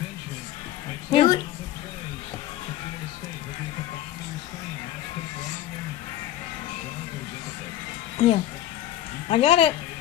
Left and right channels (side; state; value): right; quieter; 12.8 dB